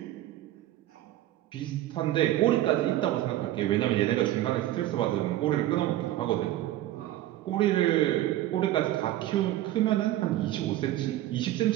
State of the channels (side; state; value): left; quieter; 14.3 dB